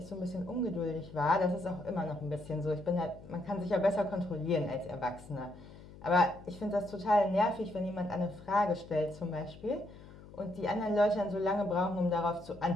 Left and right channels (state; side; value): noise; left; hum, 18 dB below the sound